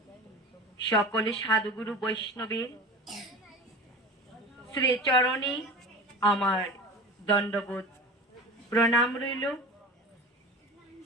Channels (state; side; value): normal; both; correlation 0.35